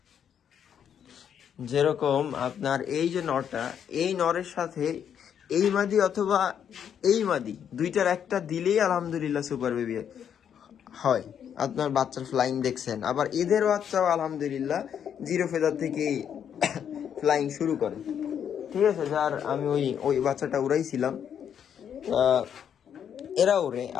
যেরকম আপনার এই যে নরটা, এই নরের সাথে এই মাদি অথবা এই মাদি দুইটার একটা দিলেই আলহামদুলিল্লাহ সুপার বেবি হয়। আপনার বাচ্চার ফ্লাইং দেখছেন, আবার এদের বাচ্চাও আলহামদুলিল্লাহ জিরো ফেদার থেকেই ফ্লাইং শুরু করে। ঠিক আছে, যার আমি ওই বাচ্চাটা উড়াইছিলাম, এরা ওরে।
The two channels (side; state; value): right; quieter; 8.5 dB